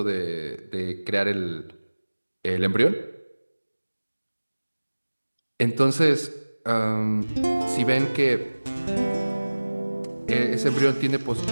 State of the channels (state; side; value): inverted; both; correlation -1.00